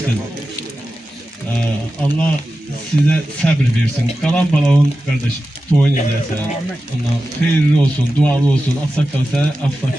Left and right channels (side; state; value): both; normal; correlation 0.93